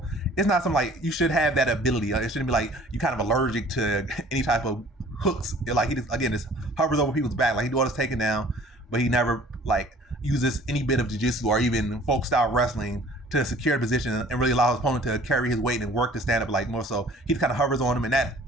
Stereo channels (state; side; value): normal; both; correlation 0.51